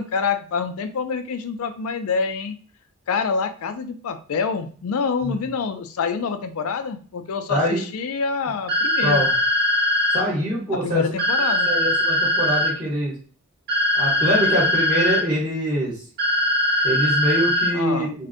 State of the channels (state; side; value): normal; both; correlation 0.06